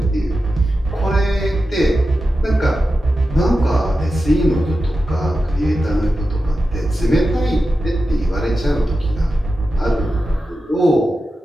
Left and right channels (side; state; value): both; normal; correlation 0.92